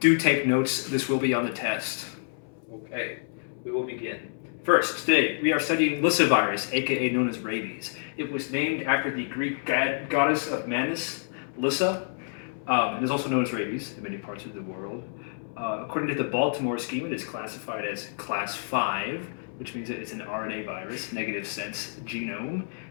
take notes, this will be on the test. Okay, we will begin. First, today we are studying Lyssavirus, aka known as rabies. It was named after the Greek goddess of madness, Lyssa. It is also known as rabies in many parts of the world. According to the Baltimore scheme, it is classified as class 5, which means that it's an RNA virus, negative sense genome,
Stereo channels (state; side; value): silent; right; 59 dB below the other